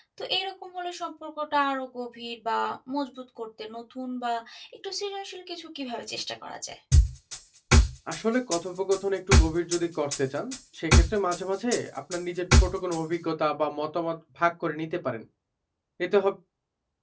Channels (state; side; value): identical; both; correlation 1.00